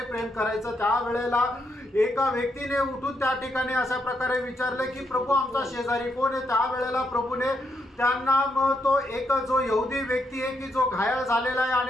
प्रेम करायचं। त्या वेळेला एका व्यक्तीने उठून त्या ठिकाणी अशा प्रकारे विचारले की प्रभू आमचा शेजारी कोण आहे? त्या वेळेला प्रभूने त्यांना तो एक जो यहुदी व्यक्ती आहे की जो घायल झालेला आहे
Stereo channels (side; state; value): both; normal; correlation 0.79